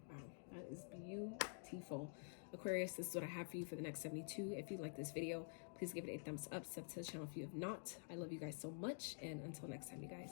wow, that is beautiful. Aquarius, this is what I have for you for the next 72. If you like this video, please give it a thumbs up, sub to the channel if you have not. I love you guys so much, and until next time, you guys,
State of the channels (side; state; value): right; silent; digital silence